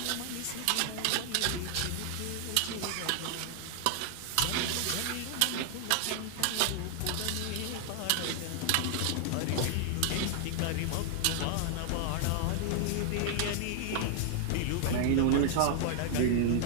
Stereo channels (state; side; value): different; both; correlation 0.00